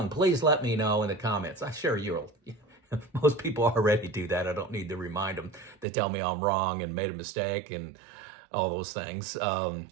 please let me know in the comments. I'm sure you'll. Most people already do that. I don't need to remind them. They tell me I'm wrong and made a mistake and all those things.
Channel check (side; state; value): left; drops out; at 5.9 s